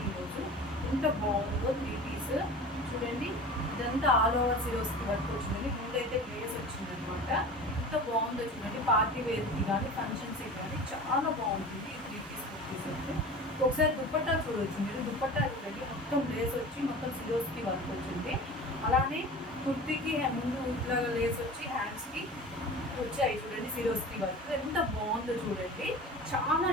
ఈరోజు ఎంత బాగుందో 3 పీస్ చూడండి. ఇదంతా ఆల్ ఓవర్ సిరోస్కి వర్క్ వచ్చిందండి. ముందైతే లేస్ వచ్చిందనమాట. ఎంత బాగుందో చూడండి. పార్టీ వేర్కి కానీ ఫంక్షన్స్కి కానీ చాలా బాగుంటుంది ఈ 3 పీస్ కుర్తీస్ అయితే. ఒకసారి దుప్పట్టా చూడవచ్చు మీరు. దుప్పట్టా చూడండి, మొత్తం లేస్ వచ్చి మొత్తం సిరోస్కి వర్క్ వచ్చింది. అలానే కుర్తీకి ముందు ఇట్లా లేస్ వచ్చి హ్యాండ్స్కి వచ్చాయి చూడండి సిరోస్కి వర్క్. ఎంత బాగుందో చూడండి. చాలా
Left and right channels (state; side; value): normal; both; correlation 0.36